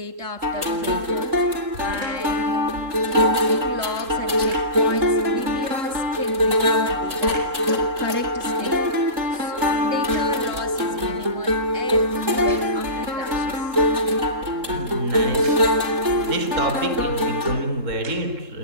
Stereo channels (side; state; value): left; late; 3.7 ms